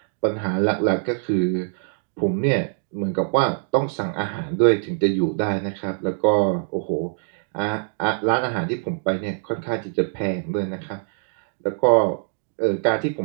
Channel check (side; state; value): left; silent; digital silence